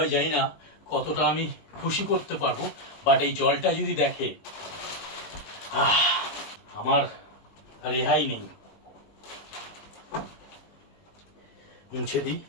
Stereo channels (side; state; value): right; late; 20 ms